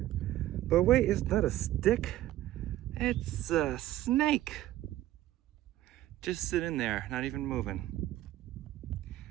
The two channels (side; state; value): left; quieter; 14.3 dB